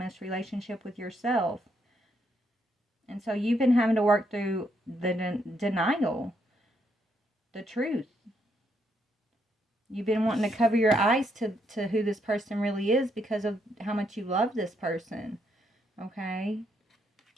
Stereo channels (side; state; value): both; normal; correlation 0.76